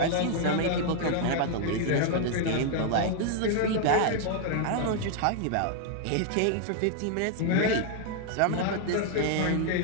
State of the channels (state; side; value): different; both; correlation 0.00